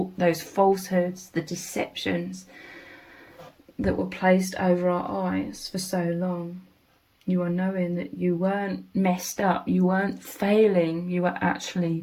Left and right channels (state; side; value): identical; both; correlation 1.00